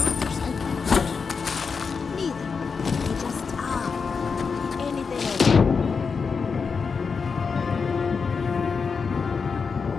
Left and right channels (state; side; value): quieter; right; 5.3 dB